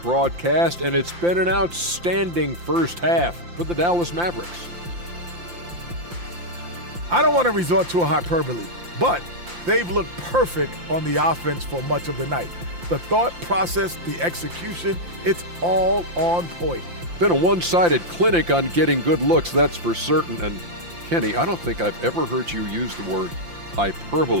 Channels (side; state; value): left; late; 5.8 ms